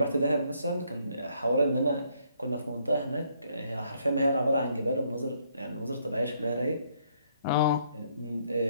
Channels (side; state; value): both; inverted; correlation -0.70